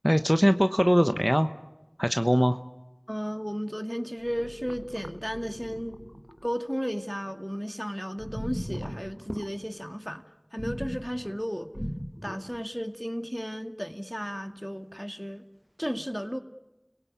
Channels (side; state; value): both; identical; correlation 1.00